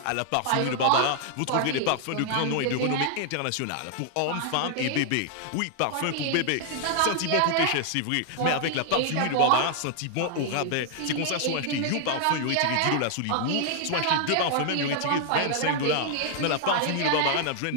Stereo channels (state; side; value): different; both; correlation 0.00